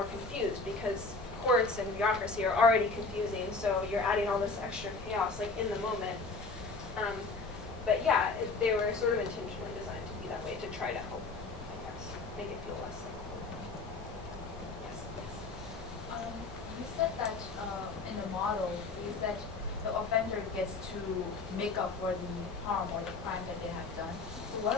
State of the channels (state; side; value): quieter; right; 3.8 dB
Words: confused because courts and bureaucracy are already confusing, so you're adding all this extra chaos like in the moment. But yeah, they were sort of intentionally designed to be that way to try to help, I guess, make it feel less like. Yes. You said that in the model, you said the offender gets to make up for the harm or the crime that they have done. What